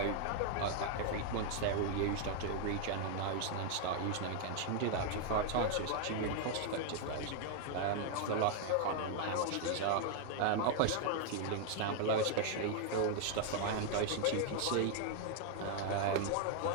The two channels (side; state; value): both; different; correlation 0.00